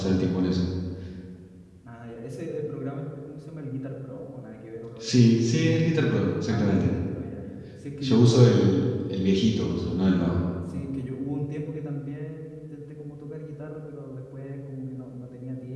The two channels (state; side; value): identical; both; correlation 1.00